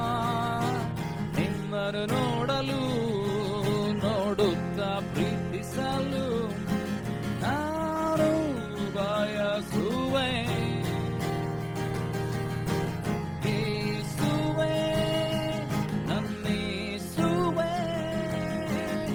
ನಿನ್ನನ್ನು ನೋಡಲು ನೋಡುತ್ತಾ ಪ್ರೀತಿಸಲು ನಾನು ಬಯಸುವೆ. ಯೇಸುವೇ, ನನ್ನೇಸುವೇ,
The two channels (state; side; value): identical; both; correlation 1.00